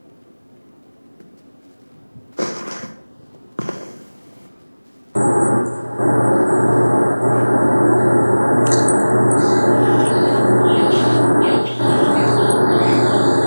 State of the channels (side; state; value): both; inverted; correlation -1.00